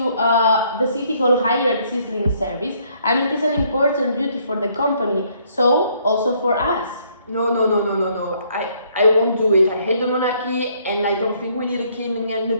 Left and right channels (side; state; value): both; inverted; correlation -0.66